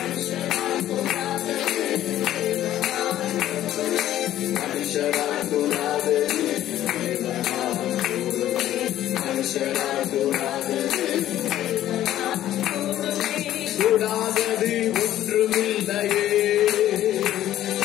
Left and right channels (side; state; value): right; quieter; 12.8 dB